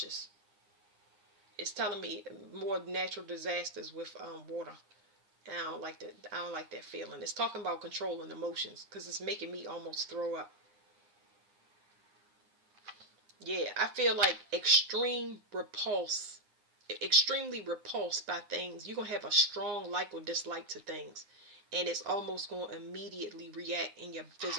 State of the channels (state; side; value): late; left; 9.7 ms